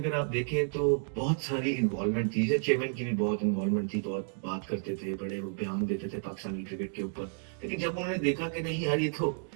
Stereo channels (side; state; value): left; silent; 57 dB below the other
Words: आप देखें तो बहुत सारी इन्वॉल्वमेंट थी, जैसे चेयरमैन की भी बहुत इन्वॉल्वमेंट थी, बहुत बात करते थे, बड़े वो बयान देते थे पाकिस्तानी क्रिकेट के ऊपर। लेकिन जब उन्होंने देखा कि नहीं यार